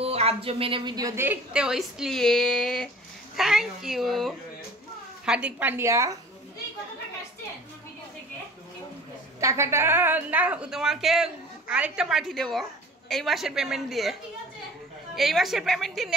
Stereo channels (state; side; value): normal; both; correlation 0.45